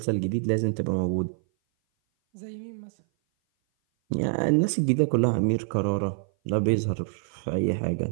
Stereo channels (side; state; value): left; silent; 57 dB below the other